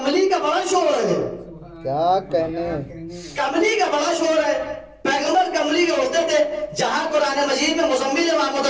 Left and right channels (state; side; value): identical; both; correlation 1.00